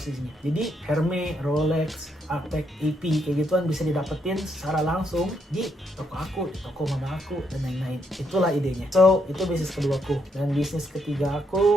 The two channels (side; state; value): both; normal; correlation 0.76